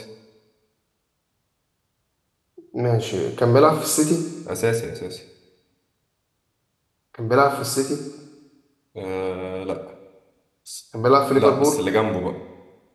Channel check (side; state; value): both; identical; correlation 1.00